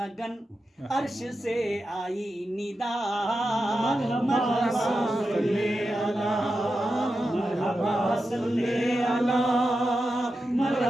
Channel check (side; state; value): both; normal; correlation 0.90